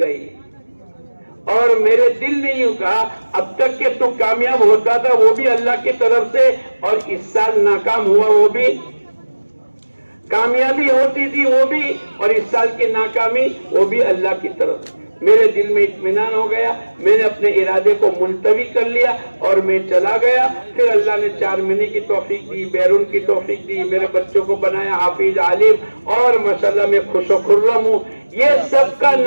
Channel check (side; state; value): both; inverted; correlation -1.00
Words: اور میرے دل نے یوں کہا اب تک کہ تو کامیاب ہوتا تھا وہ بھی اللہ کی طرف سے، اور اس سال ناکام ہوا وہ بھی، کامیابی ہوتی تھی وہ بھی اور اس سال کی ناکامی وہ بھی اللہ کی طرف۔ میرے دل میں اطمینان ہو گیا، میں نے اپنے ارادے کو ملتوی کر لیا اور میں چلا گیا۔ پھر اللہ نے 4 مہینے کی توفیق دی، بیرون کی توفیق دی، میرے بچوں کو بنایا حافظ عالم، اور ماشاءاللہ میں خوش و خرم ہوں۔ یہ سب کا